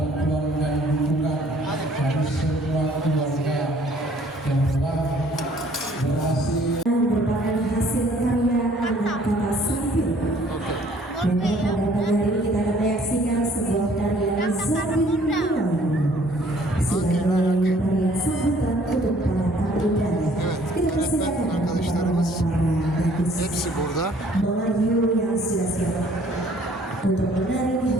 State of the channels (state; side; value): normal; both; correlation 0.58